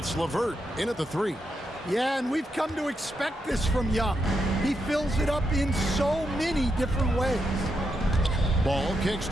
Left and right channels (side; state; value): both; normal; correlation 0.83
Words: LeVert in at the 3. Yeah, and we've come to expect this from Young. He fills it up in so many different ways. Ball kicks